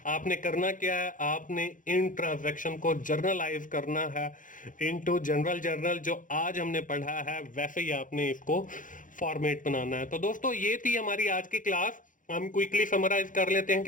आपने करना क्या है, आपने इन ट्रांजैक्शन को जर्नलाइज करना है इनटू जनरल जर्नल, जो आज हमने पढ़ा है वैसे ही आपने इसको फॉर्मेट बनाना है। तो दोस्तों ये थी हमारी आज की क्लास। हम क्विकली समराइज कर लेते हैं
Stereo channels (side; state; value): right; late; 0.38 ms